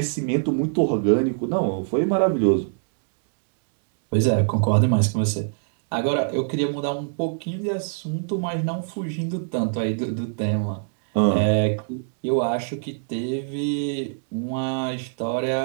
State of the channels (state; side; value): silent; left; digital silence